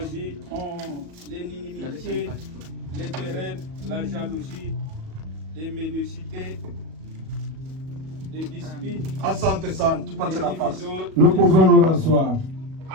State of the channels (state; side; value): late; left; 37 ms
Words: l'inimitié, les querelles, la jalousie, les ménicités, les disputes, Asante sana, tupate les nafasi. divisions. Nous pouvons nous rasseoir.